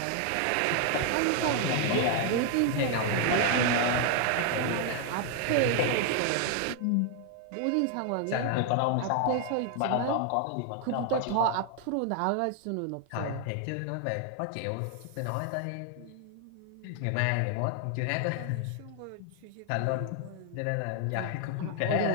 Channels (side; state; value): both; different; correlation 0.00